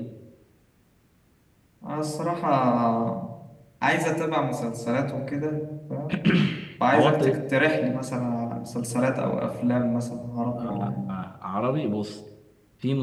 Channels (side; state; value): both; identical; correlation 1.00